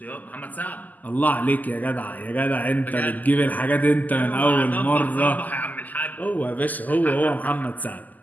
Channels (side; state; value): right; late; 0.081 ms